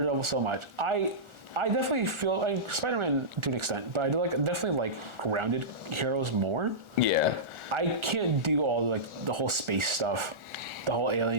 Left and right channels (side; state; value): left; late; 1.4 ms